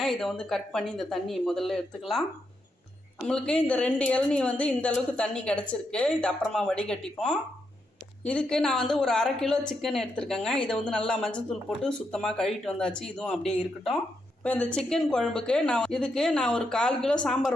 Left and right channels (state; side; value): normal; both; correlation 0.82